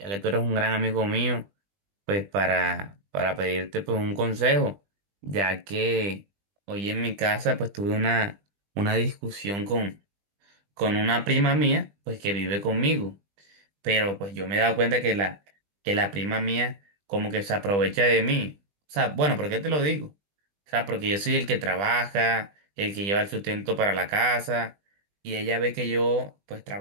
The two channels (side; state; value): left; late; 20 ms